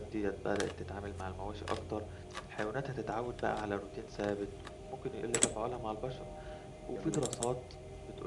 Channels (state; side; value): identical; both; correlation 1.00